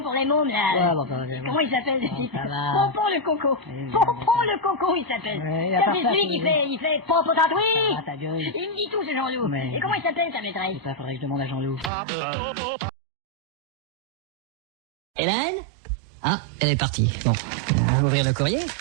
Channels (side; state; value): left; drops out; at 11.9 s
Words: pour les mômes, là. Ouais, bon, bah, Comment il s'appelle, ce Bon, type? ça va. Pompon le Coco. Oui, Pompon le Coco, il s'appelle. Ouais, à Ça, part c'est ça, celui qui c'est- fait Pompon tatoué. Ah, ta gueule. Il me dit tout, ce Jean-Loup. Mais- Et comment il s'appelle, ta maîtresse? Ça, faudrait que je demande à Jean-Loup. Hélène? Ah, elle est partie. Bon, ouvrir le courrier.